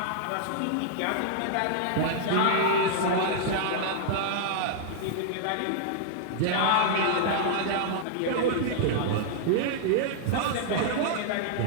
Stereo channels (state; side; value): different; both; correlation -0.01